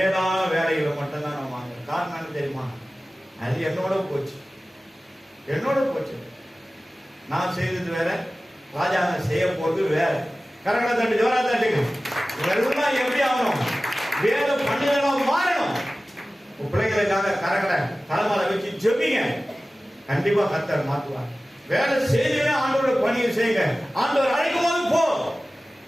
வேலைகளை மட்டும்தான் நான் வாங்க. காரணம் என்ன தெரியுமா? அது என்னோட போச்சு. நான் செய்தது வேற, ராஜாங்க செய்ய போறது வேற. கரங்களை தட்டு, ஜோரா தட்டுங்க. இதெல்லாம் எப்படி ஆகணும்? வேலை பண்ணுதெல்லாம் மாறணும். பிள்ளைங்களுக்காக கரங்களை தலைமையில வச்சு ஜெபிங்க. கண்டிப்பா கர்த்தர் மாற்றுவார். வேலை செய்தீங்கன்னா ஆண்டோட பணியை செய்யுங்க. ஆண்டவர் அழைக்கும் போது போ,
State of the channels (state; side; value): normal; both; correlation 0.96